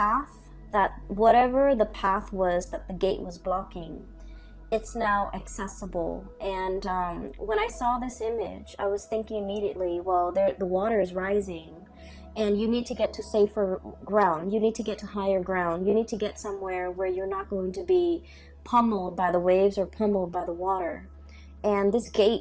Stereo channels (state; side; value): identical; both; correlation 1.00